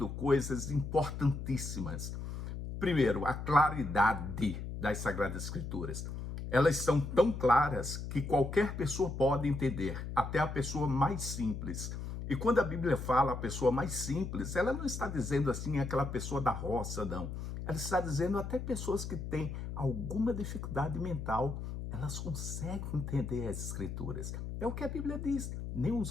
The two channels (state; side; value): noise; left; hum, 6 dB below the sound